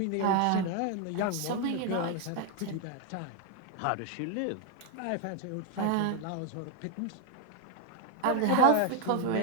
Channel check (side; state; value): both; different; correlation 0.01